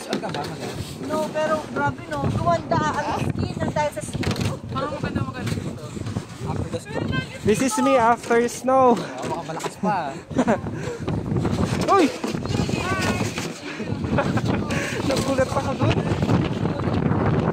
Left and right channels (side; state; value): both; identical; correlation 1.00